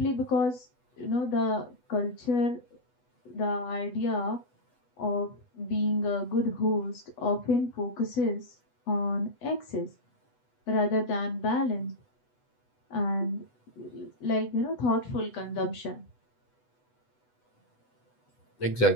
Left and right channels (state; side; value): late; right; 8.1 ms